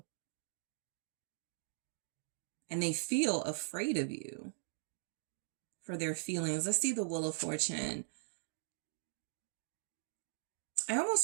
And they feel afraid of you for their feelings. Let's see the Wheel of Fortune. I almost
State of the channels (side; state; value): left; silent; digital silence